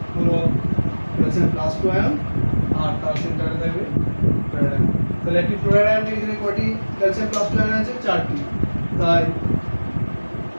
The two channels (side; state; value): both; inverted; correlation -1.00